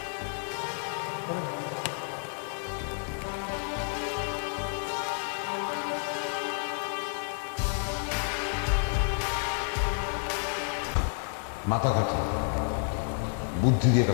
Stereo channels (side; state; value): right; silent; 58 dB below the other